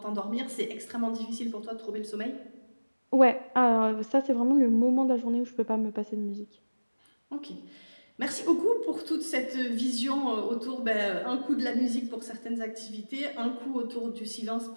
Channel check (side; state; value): both; inverted; correlation -1.00